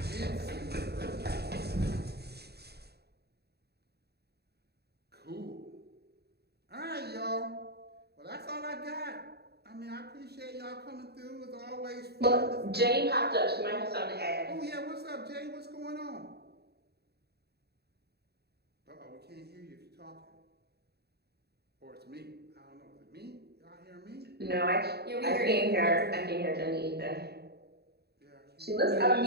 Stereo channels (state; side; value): late; left; 0.47 ms